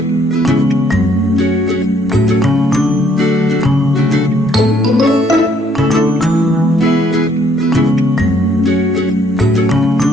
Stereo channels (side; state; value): both; normal; correlation 0.66